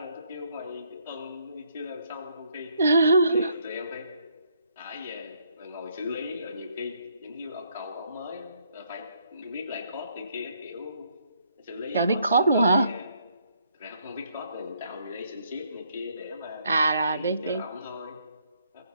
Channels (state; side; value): inverted; both; correlation -0.70